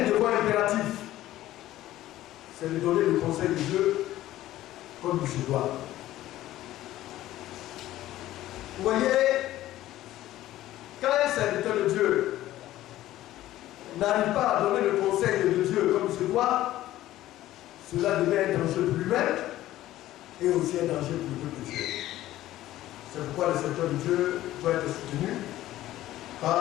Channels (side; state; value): right; quieter; 14.7 dB